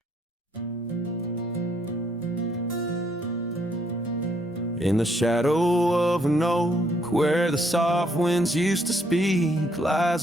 In the shadow of an oak, where the soft winds used to speak,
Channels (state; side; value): normal; both; correlation 0.70